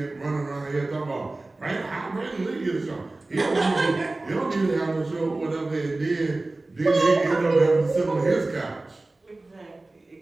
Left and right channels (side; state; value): left; quieter; 3.0 dB